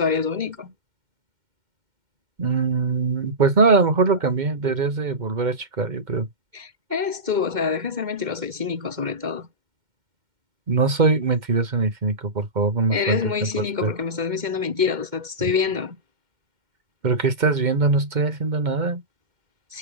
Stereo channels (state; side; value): late; left; 2.1 ms